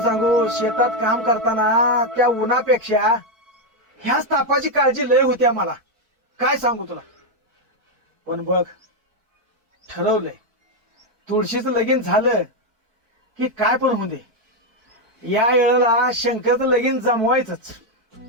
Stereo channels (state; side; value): late; left; 4.5 ms